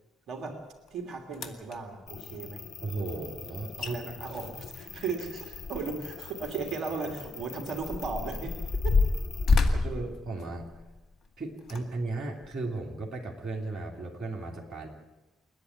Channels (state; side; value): normal; both; correlation 0.80